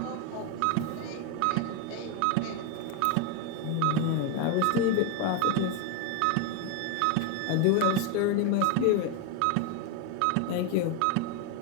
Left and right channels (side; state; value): both; different; correlation 0.02